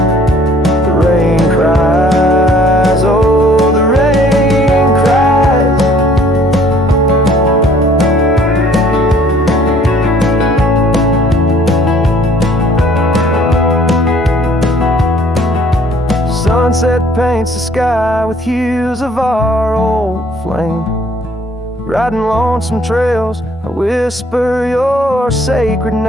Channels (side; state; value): both; normal; correlation 0.58